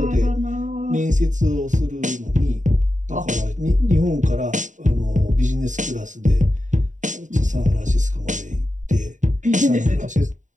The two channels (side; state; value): left; late; 0.36 ms